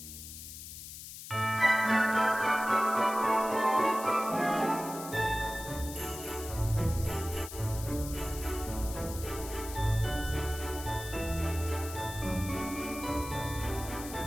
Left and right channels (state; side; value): noise; left; hiss, 11 dB below the sound